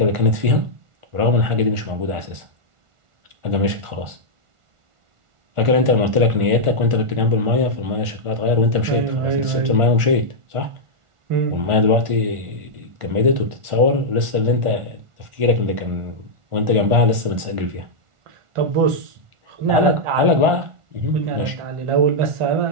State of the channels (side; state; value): left; late; 1.4 ms